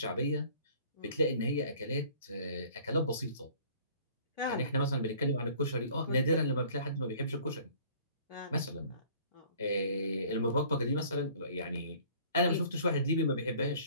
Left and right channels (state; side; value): inverted; both; correlation -0.52